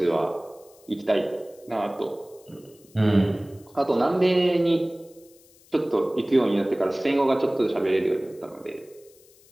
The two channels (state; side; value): noise; left; hiss, 28 dB below the sound